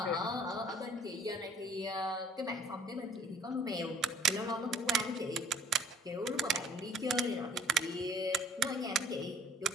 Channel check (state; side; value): normal; both; correlation 0.54